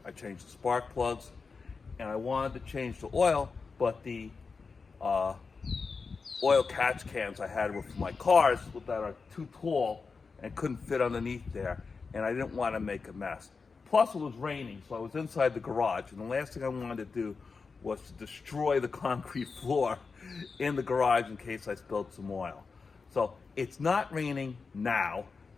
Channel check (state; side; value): quieter; right; 4.7 dB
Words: I changed the spark plugs, and I wanted to change the oil, but the oil catch cans I had were for my cars that are too tall and couldn't fit underneath there, and I didn't want to make a mess. Plus it was raining, so I was inside the garage, and the last thing I wanted to do was to destroy the concrete floor in the garage in case I spilled some oil. So it's not raining now,